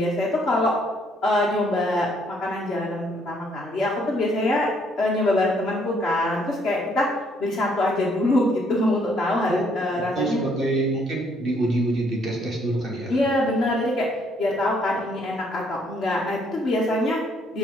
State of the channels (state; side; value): normal; both; correlation 0.68